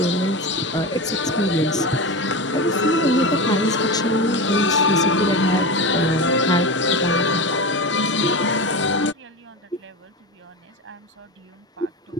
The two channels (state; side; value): normal; both; correlation 0.23